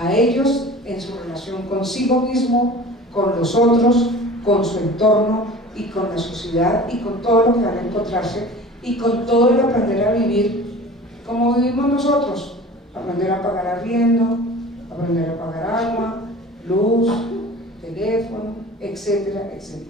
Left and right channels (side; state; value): both; normal; correlation 0.40